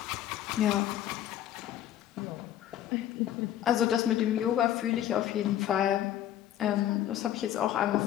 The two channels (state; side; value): quieter; right; 11.8 dB